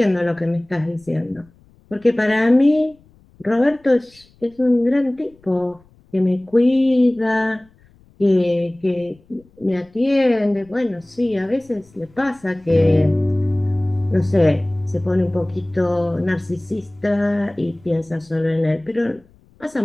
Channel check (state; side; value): noise; left; rumble, 30 dB below the sound